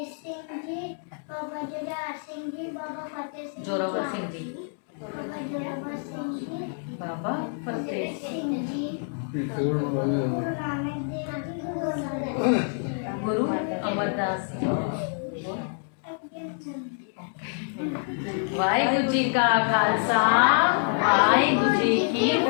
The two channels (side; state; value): right; silent; 60 dB below the other